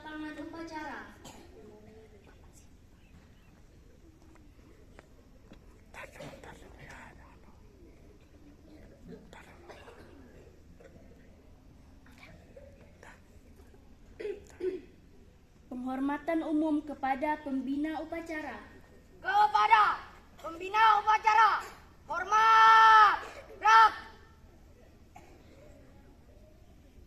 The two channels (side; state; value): both; identical; correlation 1.00